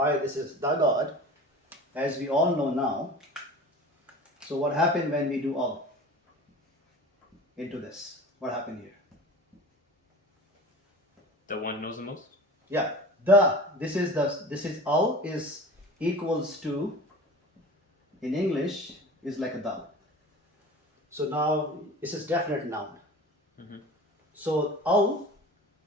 this is the God, as we all know now. So what happened when we do Al into this? What happened here? The one knows the most? Yeah. This is Al is equals to, in English, is like a the. So now this is definite noun. So Al,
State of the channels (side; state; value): both; normal; correlation 0.37